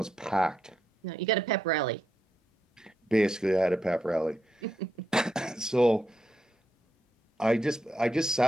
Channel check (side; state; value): both; normal; correlation 0.82